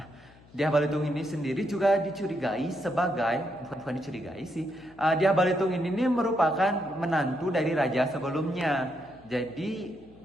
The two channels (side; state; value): left; noise; hum, 25 dB below the sound